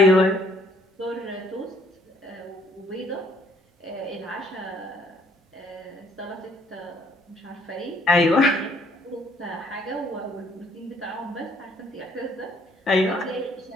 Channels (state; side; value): normal; both; correlation 0.63